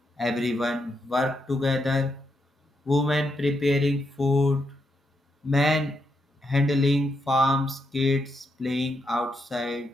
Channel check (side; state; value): both; normal; correlation 0.81